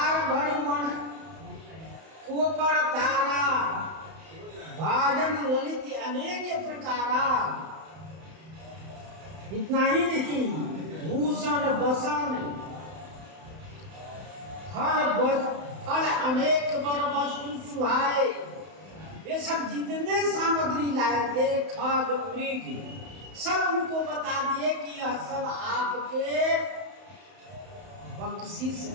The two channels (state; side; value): late; left; 31 ms